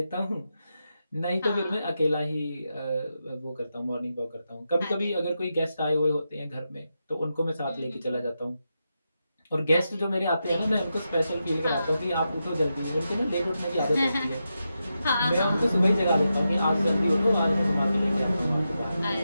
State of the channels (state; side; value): inverted; both; correlation -0.88